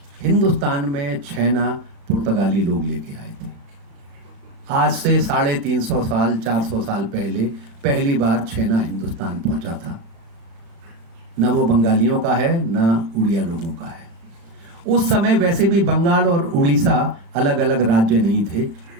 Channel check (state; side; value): late; left; 36 ms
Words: हिंदुस्तान में छेना पुर्तगाली लोग लेके आए थे। आज से 350 साल 400 साल पहले पहली बार छेना हिंदुस्तान पहुंचा था। न वो बंगालियों का है न उड़िया लोगों का है। उस समय वैसे भी बंगाल और उड़ीसा अलग अलग राज्य नहीं थे,